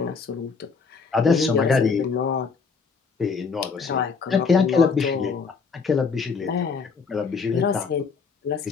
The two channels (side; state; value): right; quieter; 5.2 dB